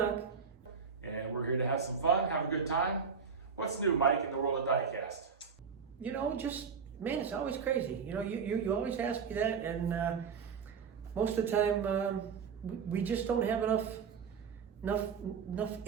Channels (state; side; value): quieter; left; 6.2 dB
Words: And we're here to have some fun, have a good time. What's new, Mike, in the world of Diecast? You know, man, it's always crazy. You know, you always ask me that, and most of the time we just don't have enough